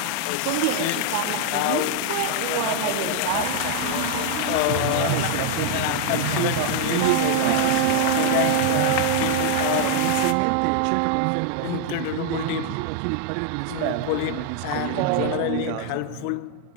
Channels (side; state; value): both; different; correlation 0.00